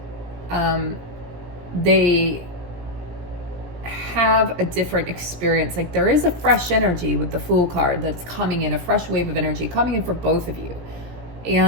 they have a different experience. Like there is a fresh energy with the Fool card that's coming in, a fresh wave of energy coming in for both of you.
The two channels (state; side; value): late; left; 17 ms